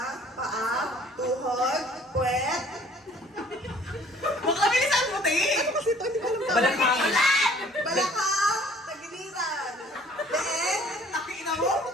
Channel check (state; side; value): normal; both; correlation 0.55